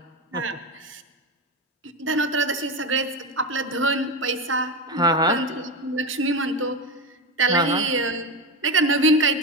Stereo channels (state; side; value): normal; both; correlation 0.17